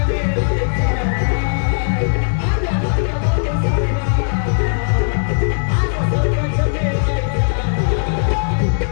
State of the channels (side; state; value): right; silent; digital silence